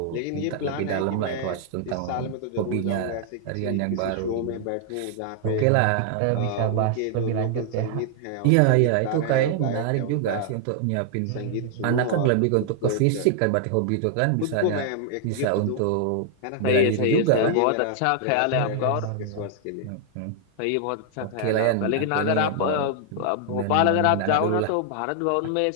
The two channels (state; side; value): different; both; correlation 0.00